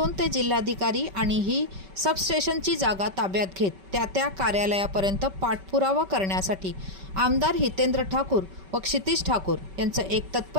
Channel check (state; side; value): late; left; 5.2 ms